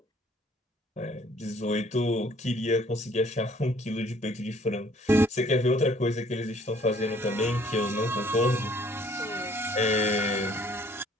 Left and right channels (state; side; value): normal; both; correlation 0.59